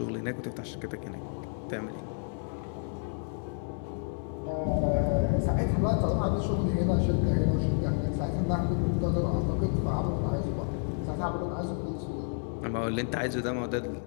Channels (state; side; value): silent; right; 57 dB below the other